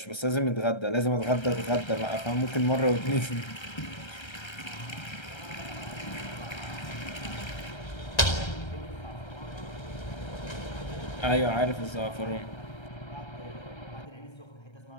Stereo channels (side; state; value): right; late; 1.3 ms